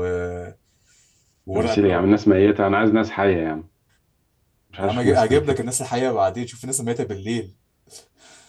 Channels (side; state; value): both; identical; correlation 1.00